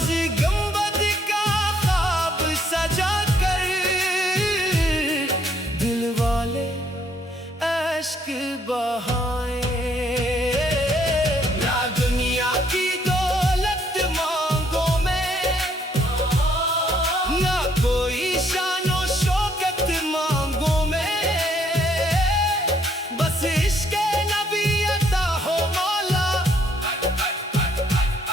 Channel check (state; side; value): normal; both; correlation 0.67